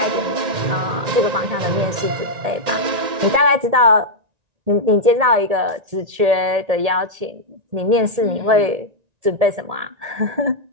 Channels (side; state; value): left; late; 1.9 ms